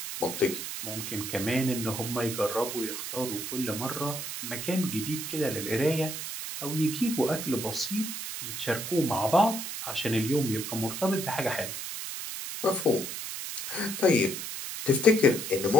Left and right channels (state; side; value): noise; right; hiss, 6 dB below the sound